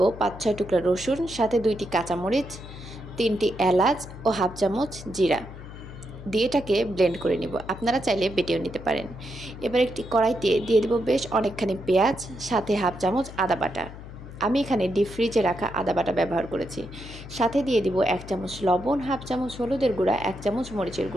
৫-৬ টুকরা রসুন, সাথে ২টি কাঁচামরিচ, ৩টি এলাচ ও হাফ চামচ জিরা দিয়ে এটাকে ব্লেন্ড করে নিব। আপনারা চাইলে বেটেও নিতে পারেন। এবার একটি কড়াইতে দিয়ে দেব বেশ অনেকখানি পেঁয়াজ, সাথে হাফ চামচ আদা বাটা। আমি এখানে ডিপ ফ্রিজে রাখা আদা বাটা ব্যবহার করেছি। সাথে দিয়ে দিব ১ চামচ লবণ, হাফ চামচ হলুদের গুঁড়া, ১ চামচ মরিচের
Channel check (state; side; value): noise; left; hum, 14 dB below the sound